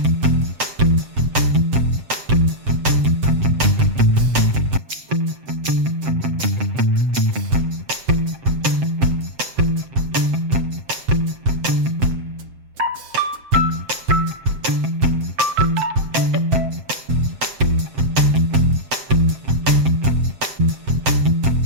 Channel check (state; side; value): late; left; 7.7 ms